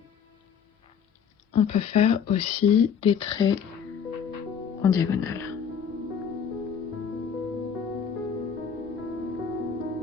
on peut faire aussi des traits en diagonale.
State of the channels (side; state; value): right; quieter; 7.2 dB